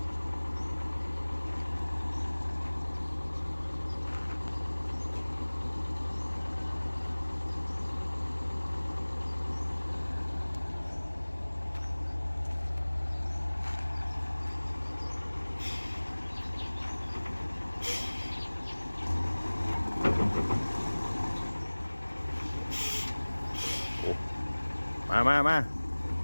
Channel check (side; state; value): both; inverted; correlation -1.00